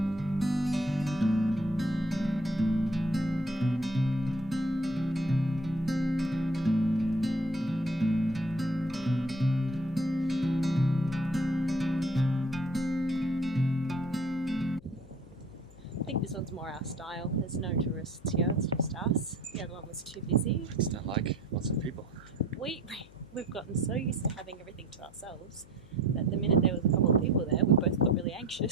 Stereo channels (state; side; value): noise; left; hum, 23 dB below the sound